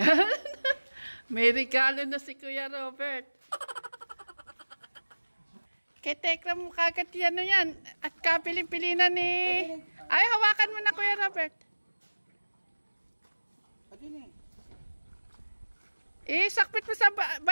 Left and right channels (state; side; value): inverted; both; correlation -1.00